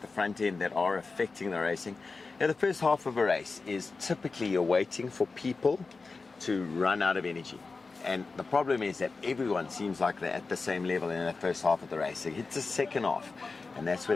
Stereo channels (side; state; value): right; quieter; 4.1 dB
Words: the front end that are affecting the racing. Now, the first half of a race is typically you're waiting for people to run out of energy. And the problem is that everyone seems like they're at the same level in the first half of the race. So it's the second half, and that's where